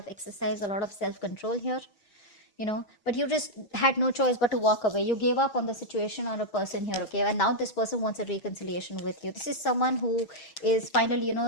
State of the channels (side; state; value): right; late; 6.3 ms